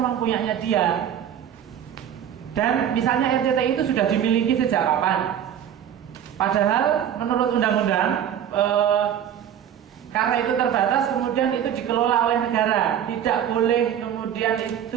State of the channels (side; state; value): left; quieter; 9.7 dB